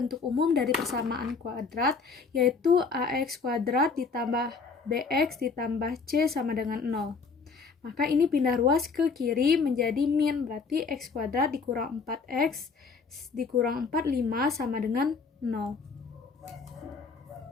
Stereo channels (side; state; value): right; quieter; 4.8 dB